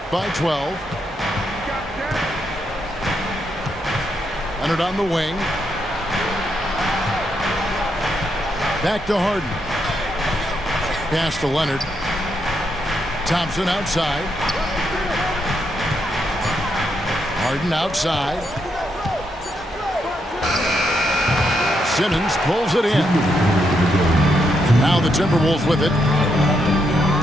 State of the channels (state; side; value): normal; both; correlation 0.80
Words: by 12. Leonard on the wing. Back to Harden. Pass to Leonard. Thompson outside. Harden outside. Simmons pulls it in. Now the Timberwolves with it.